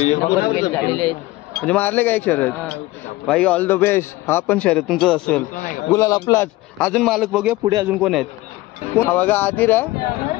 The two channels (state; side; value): quieter; right; 18.9 dB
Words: नंबर प्लेट झालेले आहेत. म्हणजे मारले का एक शर्यत? भाई ऑल द बेस्ट. हा पण शर्यत तुमचंच असेल. गुलाल आपलाच. अजून मालक बघूया पुढे अजून कोण आहेत. हा बघा आदिर आहे